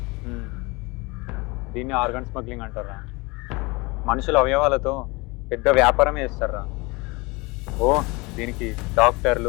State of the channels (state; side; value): quieter; right; 25.5 dB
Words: దీన్ని ఆర్గన్ స్మగ్లింగ్ అంటారా. మనుషుల అవయవాలతో పెద్ద వ్యాపారమే చేస్తారా. ఓ దీనికి